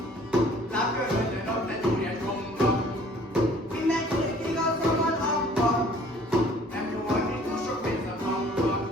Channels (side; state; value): both; normal; correlation 0.54